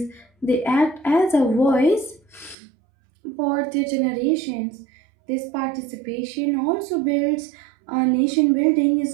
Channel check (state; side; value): drops out; left; at 2.6 s